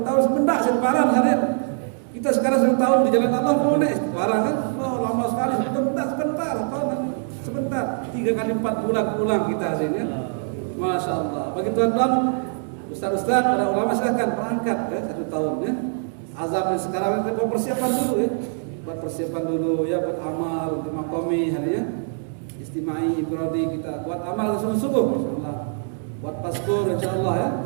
tahun semendak separan harian. Kita sekarang 1 tahun di jalan Allah boleh separan kan? Oh, lama sekali sebentar 3 kali 4 bulan pulang kita hasilnya. Masya Allah. Bagi tuan-tuan ustaz-ustaz, para ulama silakan berangkat ya 1 tahun ya. Azab sekarang itu buat persiapan dulu ya. Buat persiapan dulu ya, buat amal di maqami harinya. Istimai ibradi kita buat amal subuh-subuh insyaallah. Buat pastur insyaallah ya.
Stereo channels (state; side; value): silent; left; 63 dB below the other